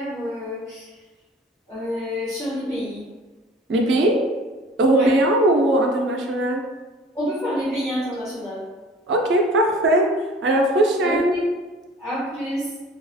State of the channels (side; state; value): both; normal; correlation 0.46